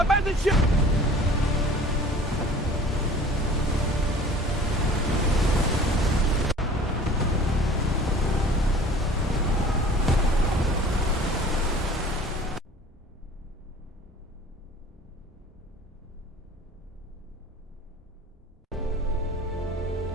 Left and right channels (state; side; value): normal; both; correlation 0.46